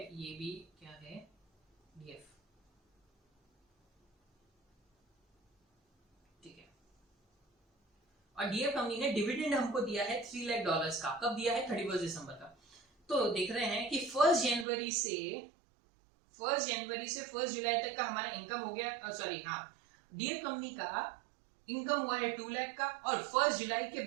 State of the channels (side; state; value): left; drops out; at 14.7 s